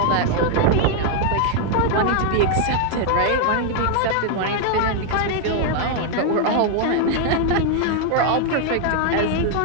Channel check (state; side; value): different; both; correlation 0.00